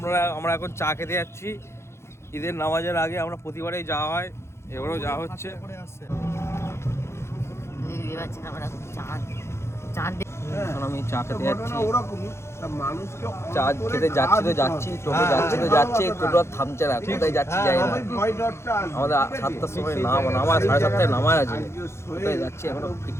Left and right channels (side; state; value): right; late; 0.13 ms